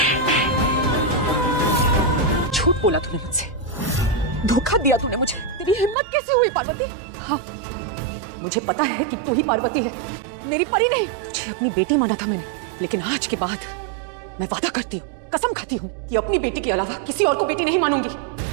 झूठ बोला तूने मुझसे, धोखा दिया तूने मुझे। तेरी हिम्मत कैसे हुई पार्वती? हाँ, मुझे पता है कि तू ही पार्वती है, मेरी परी नहीं। तुझे अपनी बेटी माना था मैंने, लेकिन आज के बाद मैं वादा करती हूँ, कसम खाती हूँ कि अपनी बेटी के अलावा किसी और को बेटी नहीं मानूंगी।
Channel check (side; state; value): left; drops out; at 6.0 s